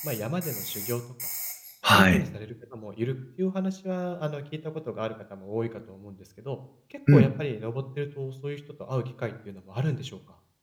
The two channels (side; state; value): both; identical; correlation 1.00